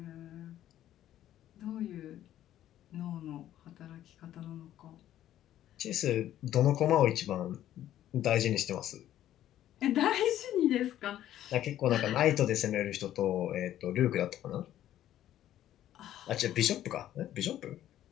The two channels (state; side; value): quieter; right; 12.3 dB